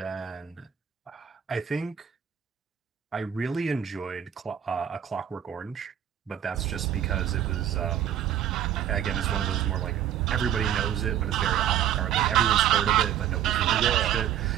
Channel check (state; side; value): quieter; left; 10.2 dB